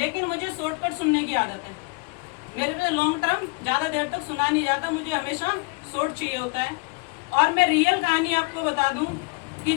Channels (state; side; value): quieter; right; 30.0 dB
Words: मुझे शॉर्टकट सुनने की आदत है, मेरे पे लॉन्ग टर्म ज़्यादा देर तक सुना नहीं जाता, मुझे हमेशा शॉर्ट चाहिए होता है। और मैं रियल कहानी आपको बता दूं कि